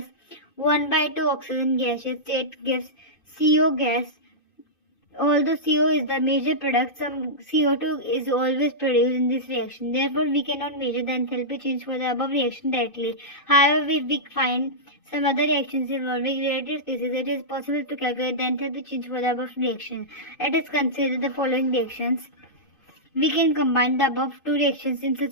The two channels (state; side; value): late; right; 2.5 ms